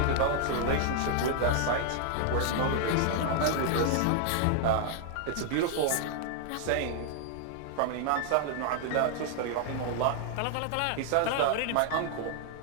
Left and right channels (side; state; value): both; different; correlation 0.00